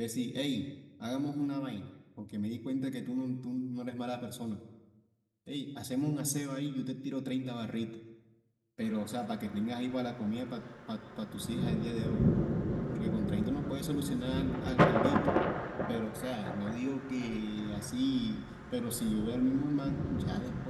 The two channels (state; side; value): identical; both; correlation 1.00